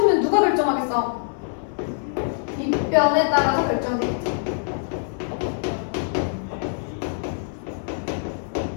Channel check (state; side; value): silent; right; digital silence